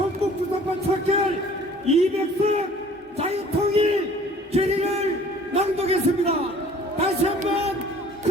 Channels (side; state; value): both; normal; correlation 0.52